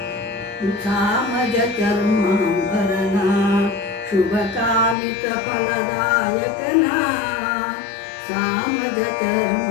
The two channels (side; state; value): right; drops out; at 5.0 s